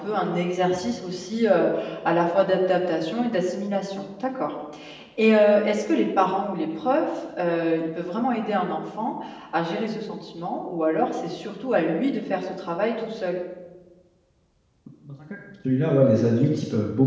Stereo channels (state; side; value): identical; both; correlation 1.00